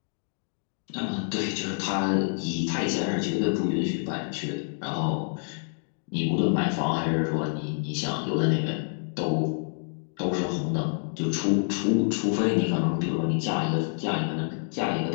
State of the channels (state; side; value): silent; right; 60 dB below the other